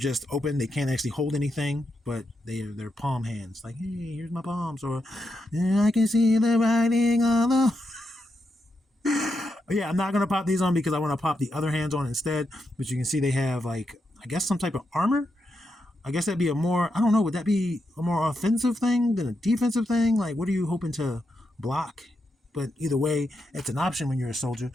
open, they can't actually hold anything, but they're palm hands. Like, hey, here's my palms, or I can see the writing on the. Yeah, I'm not gonna pop these on because I want to pop the other hands on instead. But you can see they have like, I guess, some type of armor. I guess that'd be a more, I don't know, would that be a more offensive thing than a defensive thing? Like, what are you hoping to block? But either way, it's an option when you're a soldier.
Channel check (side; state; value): both; normal; correlation 0.84